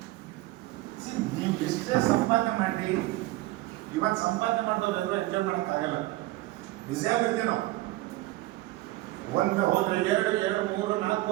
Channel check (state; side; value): quieter; left; 18.1 dB